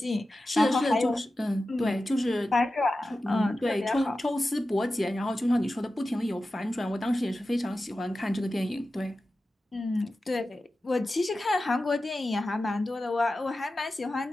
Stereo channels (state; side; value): normal; both; correlation 0.93